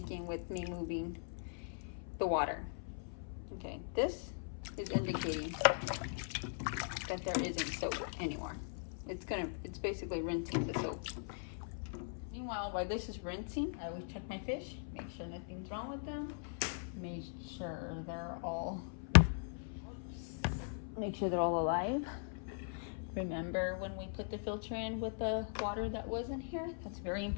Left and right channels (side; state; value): right; silent; 51 dB below the other